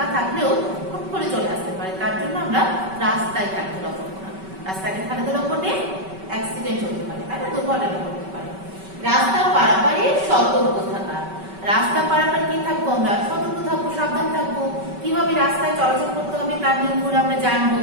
থাকলেও হুট করে চলে আসতে পারে, তার জন্য আমরা রাস্তায় খেলাধুলা করবো না। রাস্তায় খেলাধুলা করলে অ্যাক্সিডেন্ট হতে পারে, তাই না, দুর্ঘটনা ঘটতে পারে। রাস্তা পারাপারে সতর্ক থাকা। রাস্তা পারাপারে কি থাকবো? আমরা সতর্ক থাকবো, সাবধান থাকবো। কিভাবে রাস্তায় চলাচল করতে হবে তার নিয়মগুলো আমরা জানবো,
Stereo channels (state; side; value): late; left; 5.2 ms